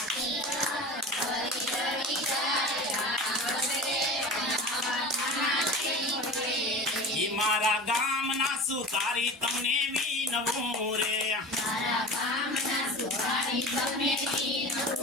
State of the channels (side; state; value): both; normal; correlation 0.34